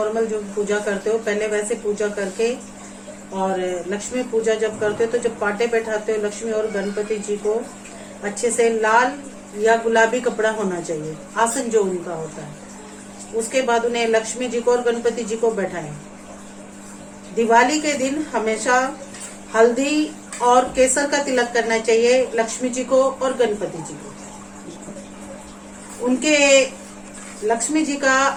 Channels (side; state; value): both; identical; correlation 1.00